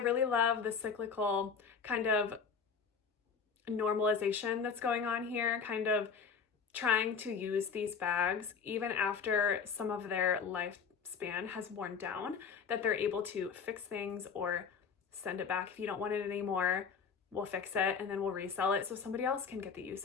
love the cyclical kind of normalization that's going on here, kind of trying to use these bags even after some of their lifespan has worn down, that they're able to fix things or send it back. If you don't want it anymore, we'll fix it and then we'll resell it so somebody else can get the use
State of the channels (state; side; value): quieter; right; 6.1 dB